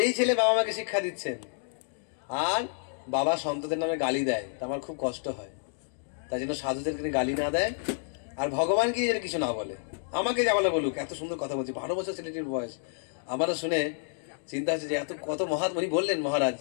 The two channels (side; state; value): right; silent; digital silence